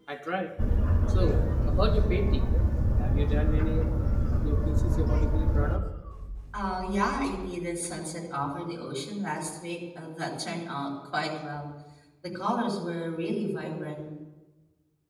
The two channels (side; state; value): both; identical; correlation 1.00